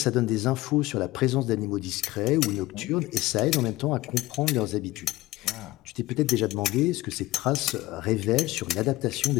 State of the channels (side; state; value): right; quieter; 17.9 dB